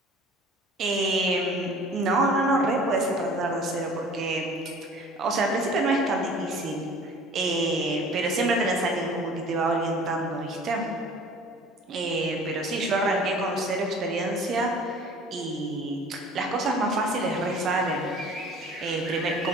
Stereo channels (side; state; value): both; normal; correlation 0.47